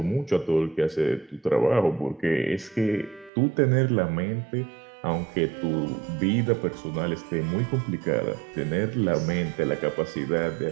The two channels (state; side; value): drops out; left; at 3.3 s